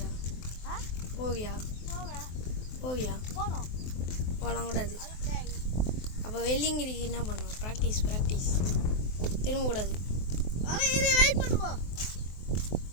போவியா போகலாம் கூடாது. அப்போ வெள்ளிங்கிரிக்கு என்ன பண்ணுவோம்? ப்ராக்டிஸ் திரும்பக்கூடாது.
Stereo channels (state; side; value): late; right; 23 ms